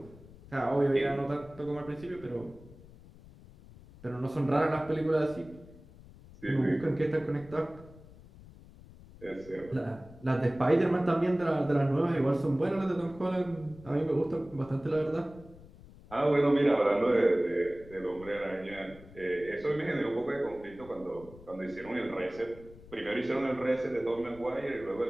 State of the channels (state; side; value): noise; left; rumble, 20 dB below the sound